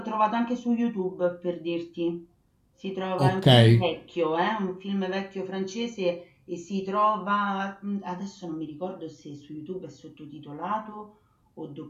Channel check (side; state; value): both; identical; correlation 1.00